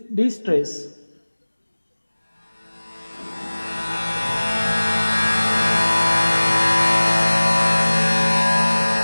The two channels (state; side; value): inverted; both; correlation -1.00